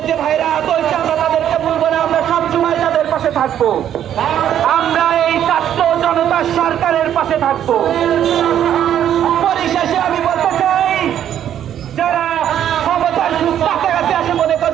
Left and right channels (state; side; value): quieter; left; 10.3 dB